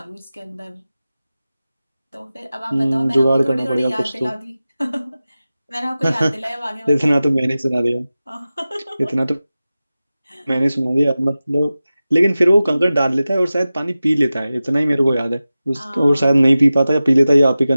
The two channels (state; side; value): inverted; both; correlation -0.95